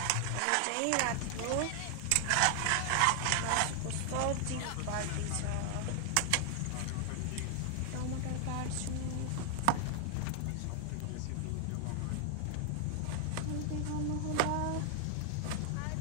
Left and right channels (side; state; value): both; different; correlation 0.00